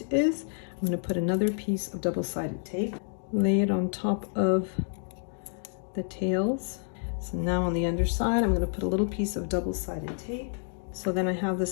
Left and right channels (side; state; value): right; silent; digital silence